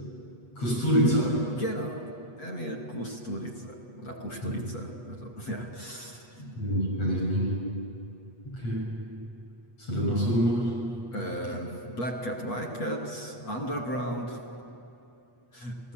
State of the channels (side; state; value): right; late; 8.2 ms